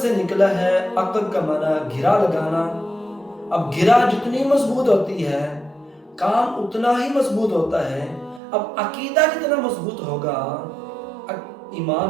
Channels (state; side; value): drops out; left; at 8.4 s